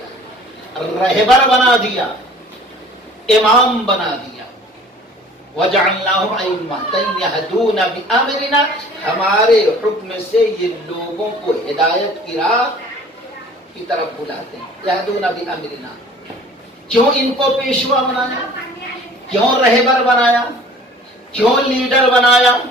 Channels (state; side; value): normal; both; correlation 0.49